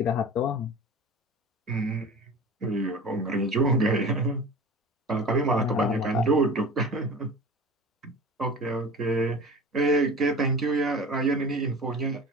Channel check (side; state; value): both; normal; correlation 0.37